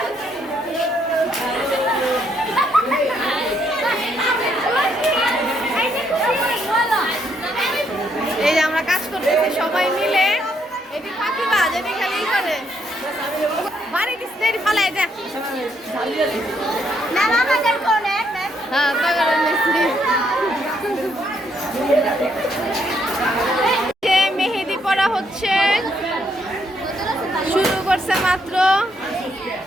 এই যে আমরা কাজ করতেছি সবাই মিলে। এটি ফাঁকিবাজ, এটি খালি করে বাড়ি দিচ্ছে ফালাই দেখ। হ্যাঁ মেহেদি পড়া হচ্ছে, শুরু করছে মাত্র।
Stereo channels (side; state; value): both; normal; correlation 0.73